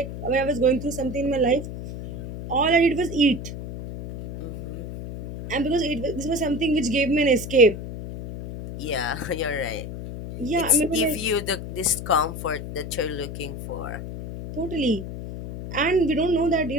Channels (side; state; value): left; noise; hum, 8 dB below the sound